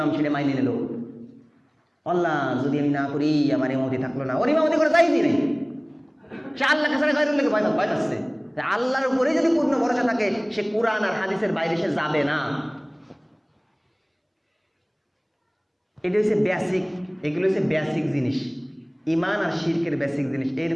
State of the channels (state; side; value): identical; both; correlation 1.00